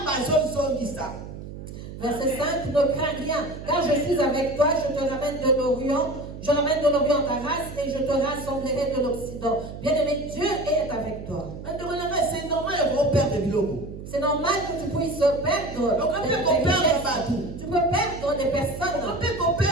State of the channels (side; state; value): right; noise; hum, 11 dB below the sound